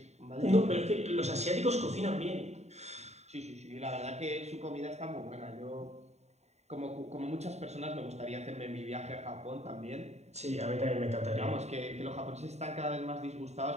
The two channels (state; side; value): late; left; 0.32 ms